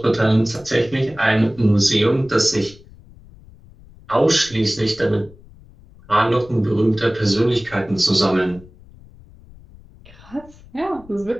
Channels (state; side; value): noise; left; rumble, 23 dB below the sound